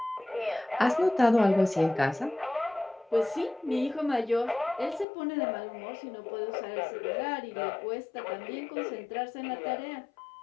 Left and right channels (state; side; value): drops out; right; at 5.1 s